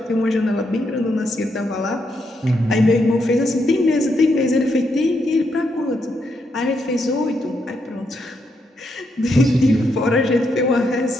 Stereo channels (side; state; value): both; normal; correlation 0.79